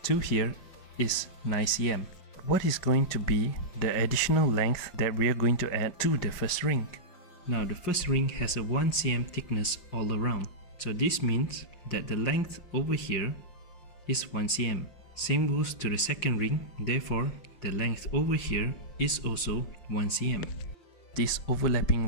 to here is 9 cm. What is going to be the additional length that we are going to add to the first ring? Now the first ring has a 1 cm thickness all around. So this means that the length over here is 1 cm. Same goes to the second ring, therefore the length over here is also 1 cm. These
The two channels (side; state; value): right; late; 5.6 ms